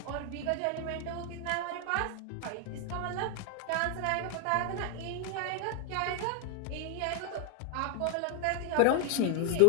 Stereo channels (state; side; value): different; both; correlation 0.00